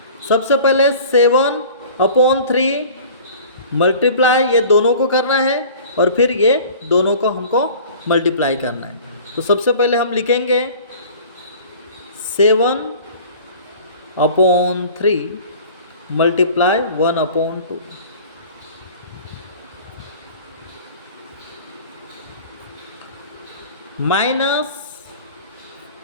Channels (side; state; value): both; inverted; correlation -0.44